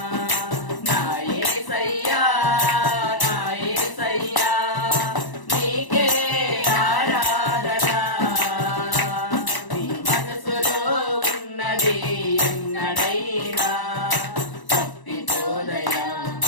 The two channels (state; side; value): late; right; 1.0 ms